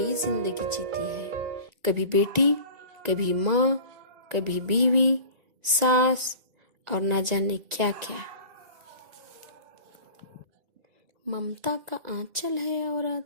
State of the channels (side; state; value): left; late; 1.9 ms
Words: जिंदगी जीती है, कभी बेटी, कभी माँ, कभी बीवी, सास और ना जाने क्या क्या। ममता का आंचल है औरत,